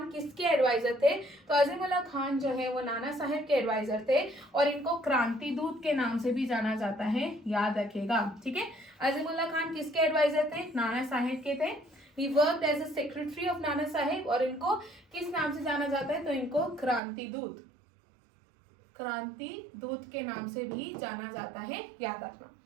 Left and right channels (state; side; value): drops out; left; at 17.0 s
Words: किसके एडवाइजर थे? तो अजीमुल्ला खान जो है वो नाना साहेब के एडवाइजर थे, और इनको क्रांति दूत के नाम से भी जाना जाता है, याद रखिएगा। ठीक है, अजीमुल्ला खान किसके एडवाइजर थे? नाना साहेब के थे। He worked as a secretary of Nana Saheb, और इनको किस नाम से जाना जाता है? तो इनको क्रांति दूत के नाम से भी जाना जाता है, याद रखना।